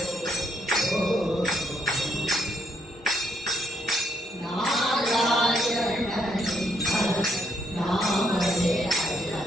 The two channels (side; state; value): both; normal; correlation 0.73